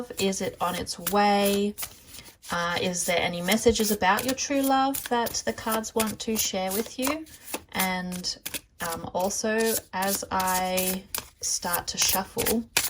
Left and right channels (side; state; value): both; identical; correlation 1.00